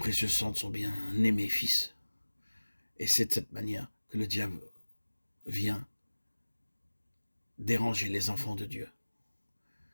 sang de son bien-aimé Fils. Et c'est de cette manière que le diable vient déranger les enfants de Dieu.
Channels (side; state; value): both; inverted; correlation -1.00